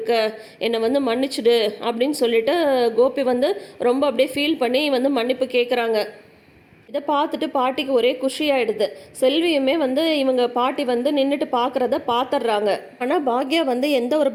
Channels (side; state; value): both; identical; correlation 1.00